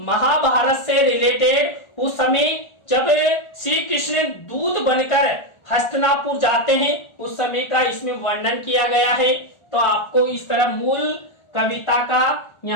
महाभारत से रिलेटेड उस समय जब श्री कृष्ण दूत बनकर हस्तिनापुर जाते हैं उस समय का इसमें वर्णन किया गया है। तो आपको इस तरह मूल कविता का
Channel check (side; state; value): right; late; 1.4 ms